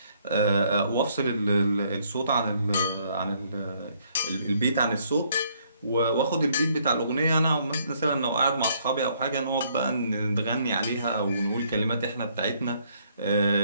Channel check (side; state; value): both; inverted; correlation -0.67